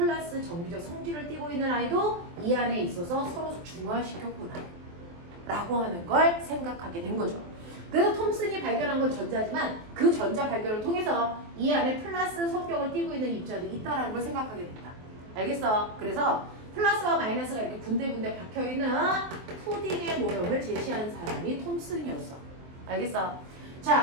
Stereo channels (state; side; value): late; left; 23 ms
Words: 정기적 성질을 띠고 있는 아이도 이 안에 있어서 서로 중화시켰구나 라고 하는 걸 생각하게 된 거죠. 그래서 톰슨이 발견한 건 전자지만 그 전자 발견을 통해서 이 안에 플러스 성격을 띠고 있는 입자도 있다라는 걸 생각하게 된다. 알겠어? 그래서 플러스와 마이너스가 이렇게 군데군데 박혀있는 푸딩의 모형을 제시한 사람이 톰슨이었어. 알겠어?